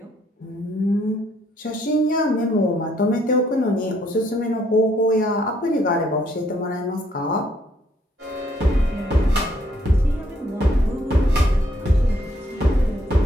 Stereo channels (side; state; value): both; normal; correlation 0.68